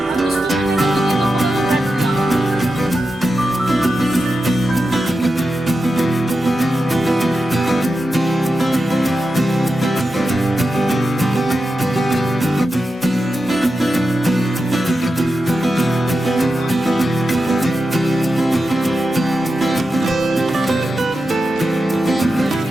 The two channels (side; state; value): both; normal; correlation 0.90